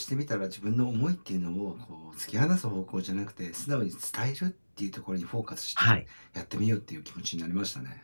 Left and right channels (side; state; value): both; inverted; correlation -1.00